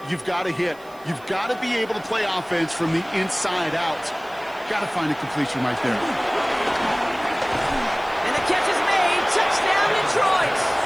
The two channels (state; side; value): noise; right; hiss, 26 dB below the sound